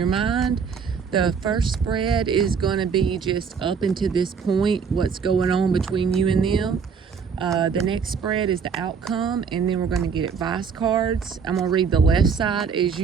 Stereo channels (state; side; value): quieter; left; 6.1 dB